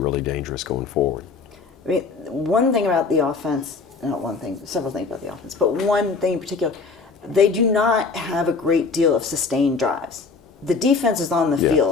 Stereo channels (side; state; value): right; quieter; 4.6 dB